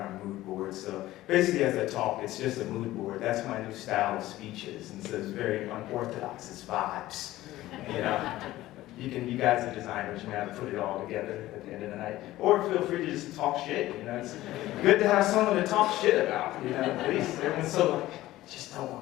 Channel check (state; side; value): quieter; right; 16.0 dB